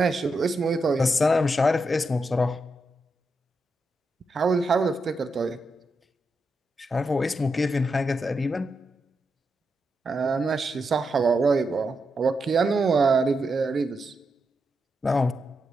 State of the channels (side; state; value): both; normal; correlation 0.85